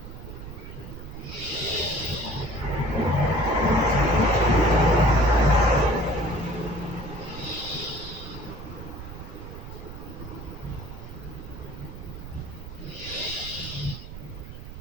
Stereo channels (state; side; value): noise; right; rumble, 12 dB below the sound